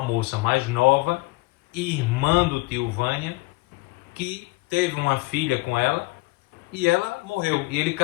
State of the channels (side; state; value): right; quieter; 23.2 dB